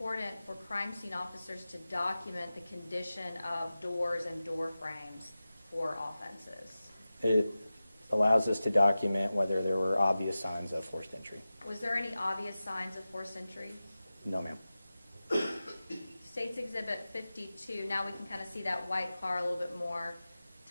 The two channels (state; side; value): inverted; both; correlation -0.95